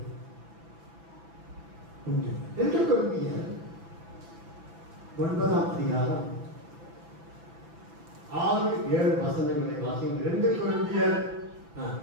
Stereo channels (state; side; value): late; left; 6.0 ms